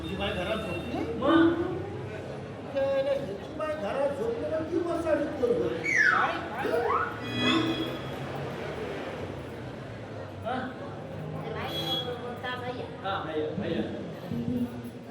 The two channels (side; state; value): both; identical; correlation 1.00